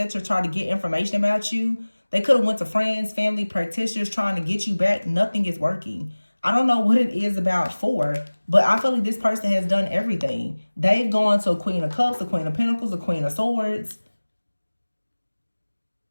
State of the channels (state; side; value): inverted; both; correlation -1.00